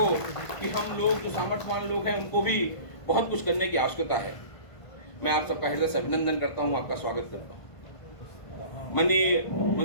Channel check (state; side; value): late; right; 1.5 ms